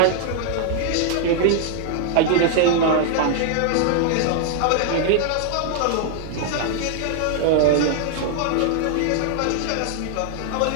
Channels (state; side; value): different; both; correlation -0.01